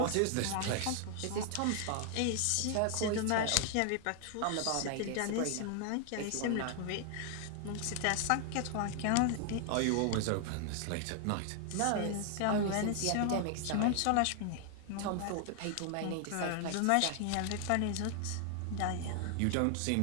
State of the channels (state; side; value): different; both; correlation 0.00